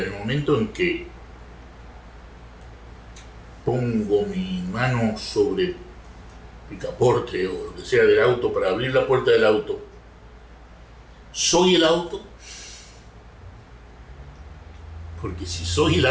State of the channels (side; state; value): both; identical; correlation 1.00